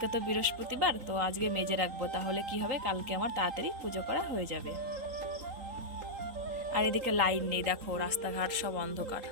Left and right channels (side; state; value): left; late; 3.8 ms